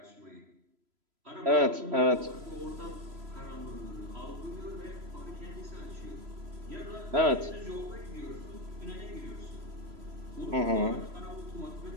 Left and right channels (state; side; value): late; left; 3.0 ms